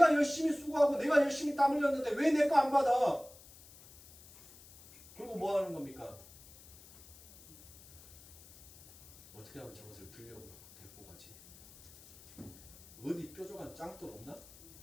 열심히 수고하고 내가 열심히 땀 흘렸는데 왜 내 거 안 받아? 그리고 뭐 하는 겁니까? 어떻게 하면 저것을 들려고 데리고 가지? 어디 뾰족한 짱돌 없나?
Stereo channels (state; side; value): noise; left; hiss, 22 dB below the sound